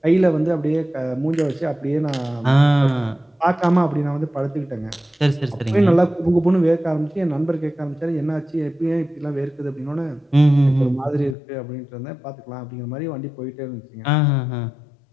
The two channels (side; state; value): right; drops out; at 11.4 s